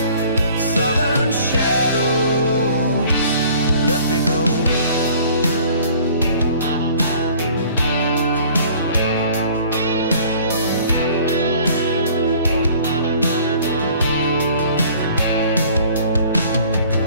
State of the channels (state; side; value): inverted; both; correlation -0.52